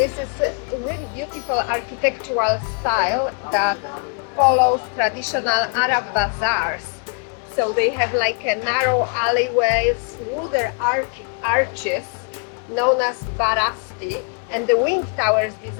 is a really beautiful architectural style that follows traditional Arab bazaars. So they have like a narrow alleyways, wooden arches known as barasti, and the wing tower is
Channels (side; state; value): right; quieter; 38.6 dB